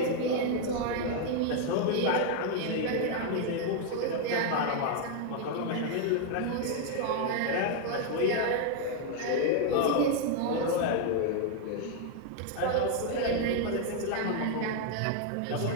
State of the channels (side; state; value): both; different; correlation 0.00